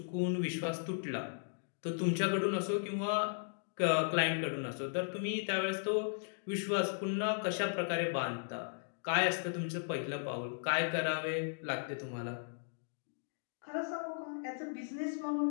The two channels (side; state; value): right; silent; digital silence